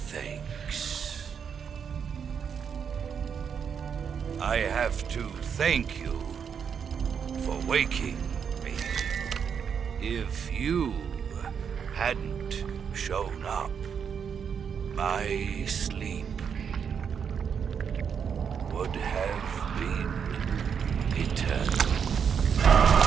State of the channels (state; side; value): quieter; left; 7.1 dB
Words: thanks. I have to thank you for waking me. If you hadn't shown up, my sleep would have been eternal.